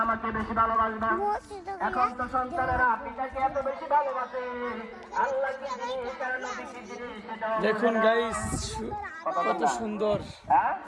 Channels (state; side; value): identical; both; correlation 1.00